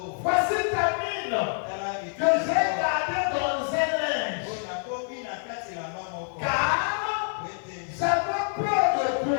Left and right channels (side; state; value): right; silent; 57 dB below the other